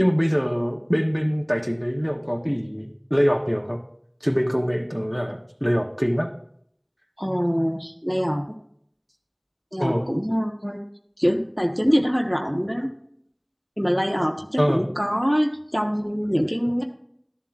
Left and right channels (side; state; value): both; identical; correlation 1.00